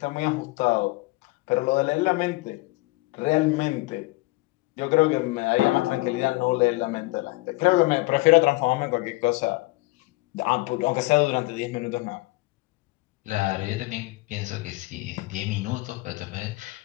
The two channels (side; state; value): right; quieter; 22.3 dB